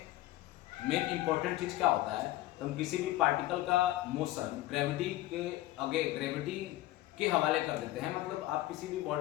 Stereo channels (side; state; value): right; quieter; 16.2 dB